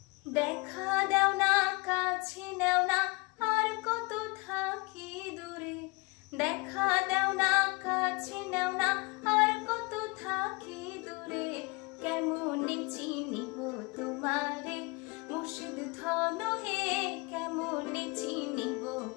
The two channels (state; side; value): quieter; right; 27.3 dB